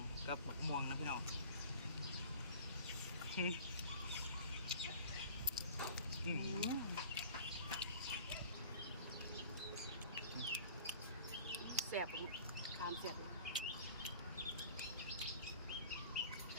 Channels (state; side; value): inverted; both; correlation -0.44